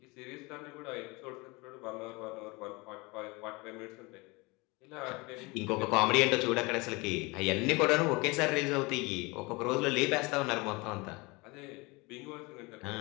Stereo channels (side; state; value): right; quieter; 25.6 dB